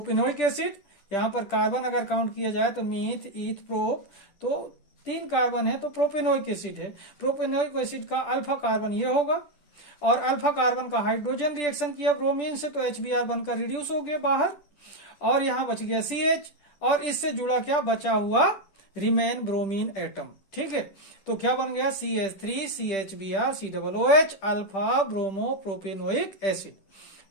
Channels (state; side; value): late; right; 10 ms